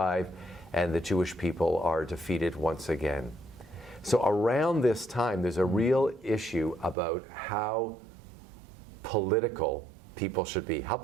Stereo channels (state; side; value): drops out; left; at 7.0 s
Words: and the Jewish people are defeated once again. So around this time, there's a real issue about how political people should be. How